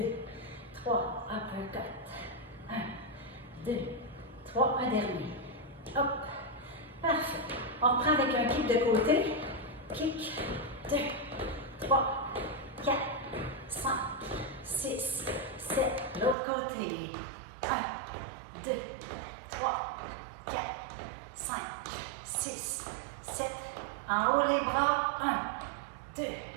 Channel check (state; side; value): drops out; left; at 16.4 s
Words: 3, uppercut. 1, 2, 3, un dernier. Hop. Parfait. On reprend avec un kick de côté. Kick. 2, 3, 4, 5, 6, 7. L'autre côté. 1, 2, 3, 4, 5, 6, 7. En haut les bras. 1, 2,